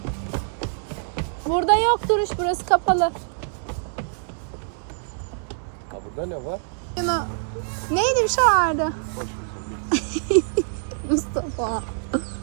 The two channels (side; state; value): left; silent; digital silence